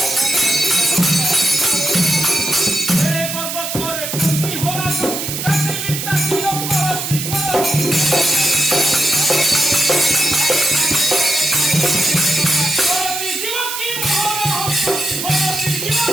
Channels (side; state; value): right; noise; hiss, 5 dB below the sound